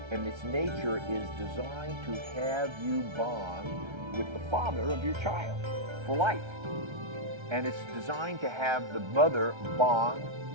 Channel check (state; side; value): late; left; 1.3 ms